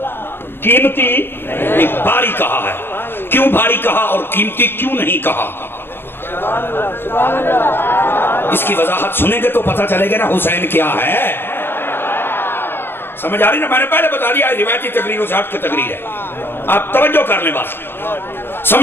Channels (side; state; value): right; late; 0.10 ms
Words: قیمتی ایک بھاری کہا ہے کیوں بھاری کہا اور قیمتی کیوں نہیں کہا اس کی وضاحت سنیں گے تو پتہ چلے گا نا حسین کیا ہے سمجھ آ رہی نا میں نے پہلے بتا دیا روایتی تقریروں سے ہٹ کے تقریر ہے آپ توجہ کر لیں بس